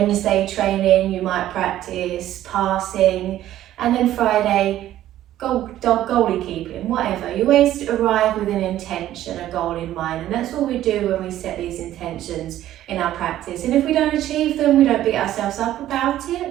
training, you might practice passing, and then Friday, goalie keeping, whatever. You always arrive with an intention, a goal in mind, and that's what we do when we set these intentions in our practice. And if we don't achieve them, we don't beat ourselves up about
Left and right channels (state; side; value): quieter; left; 13.1 dB